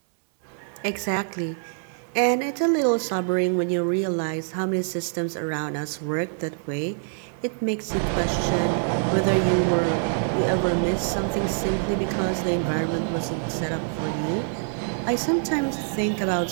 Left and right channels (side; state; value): left; silent; 62 dB below the other